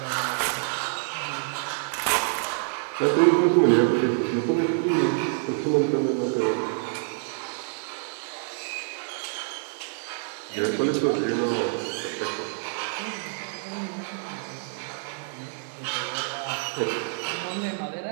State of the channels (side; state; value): left; silent; 60 dB below the other